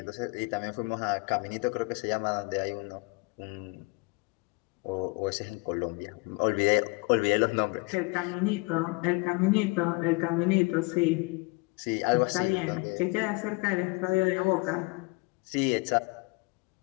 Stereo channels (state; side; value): quieter; right; 27.0 dB